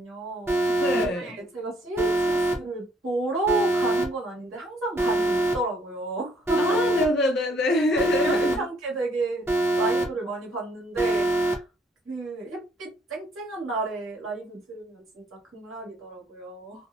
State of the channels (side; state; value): both; normal; correlation 0.66